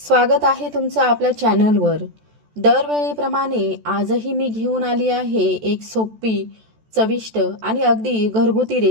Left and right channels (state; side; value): late; left; 14 ms